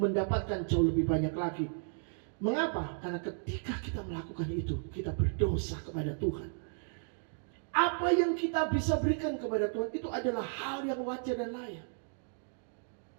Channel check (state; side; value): silent; left; digital silence